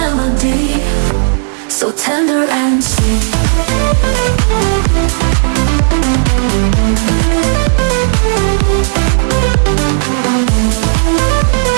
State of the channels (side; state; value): left; silent; 65 dB below the other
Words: so tender and sweet.